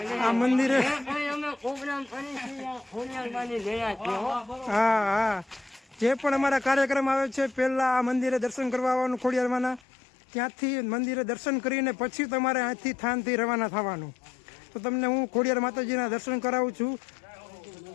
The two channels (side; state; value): right; drops out; at 9.8 s